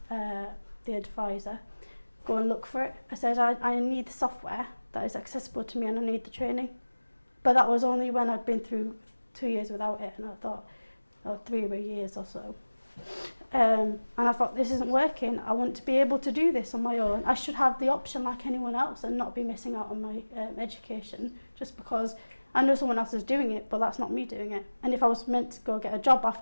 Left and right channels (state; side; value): inverted; both; correlation -1.00